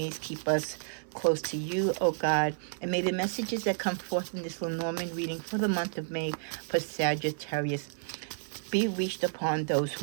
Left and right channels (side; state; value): left; silent; 57 dB below the other